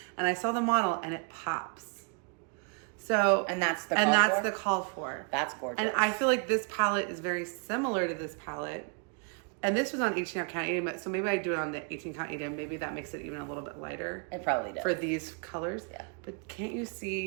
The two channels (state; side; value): quieter; left; 38.1 dB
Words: And I saw the model and it pops. So that's the call for. That's gorgeous. And I feel like this palette is very similar to this palette. And this was on 18 count 80, so maybe I do it on the 18 count 80, maybe that makes it even a little bit lighter. It probably does. For these colors. Yeah. But can't you